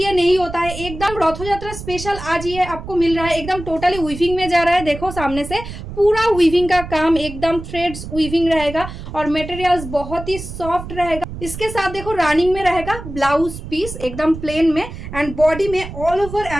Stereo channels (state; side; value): noise; right; rumble, 10 dB below the sound